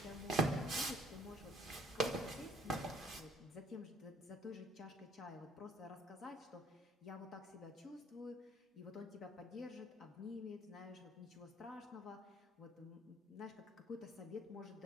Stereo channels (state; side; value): normal; both; correlation 0.60